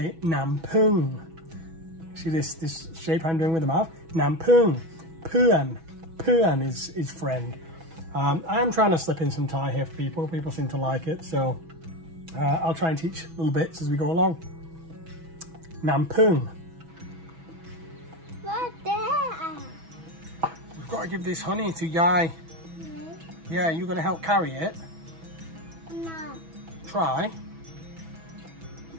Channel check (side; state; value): left; late; 6.1 ms